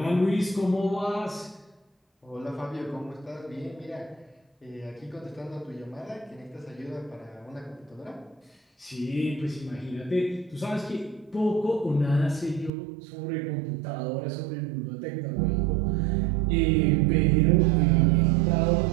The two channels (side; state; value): left; drops out; at 12.7 s